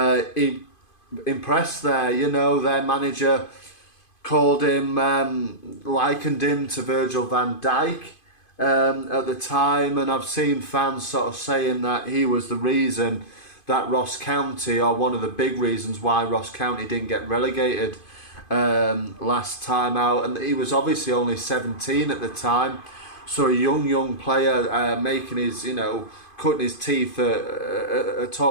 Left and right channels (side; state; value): right; late; 2.5 ms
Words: he impressed there. Their manager called him, likened him to Virgil van Dijk at the time, and I've seen fans sort of saying that he was the reason that Ross County, or one of the big reasons why Ross County didn't get relegated last time out. And he was obviously only 17 at the time, So a young player making his, cutting his teeth at